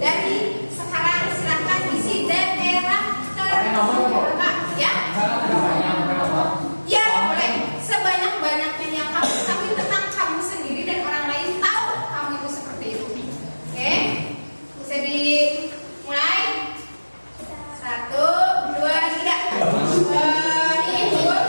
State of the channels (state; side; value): inverted; both; correlation -1.00